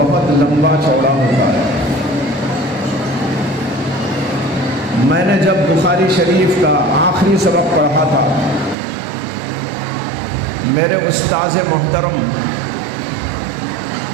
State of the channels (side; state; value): left; drops out; at 8.8 s